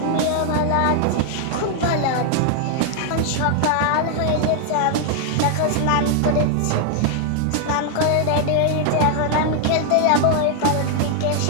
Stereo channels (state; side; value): different; both; correlation 0.00